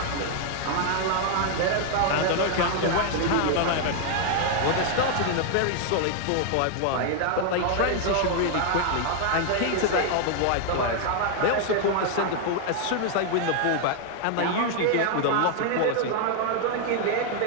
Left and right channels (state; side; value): different; both; correlation 0.00